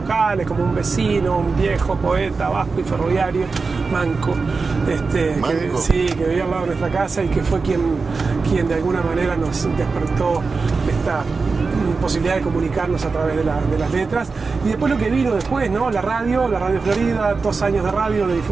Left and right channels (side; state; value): left; quieter; 4.4 dB